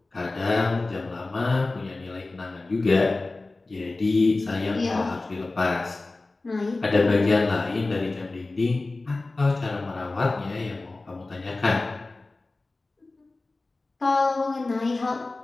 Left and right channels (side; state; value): right; quieter; 3.2 dB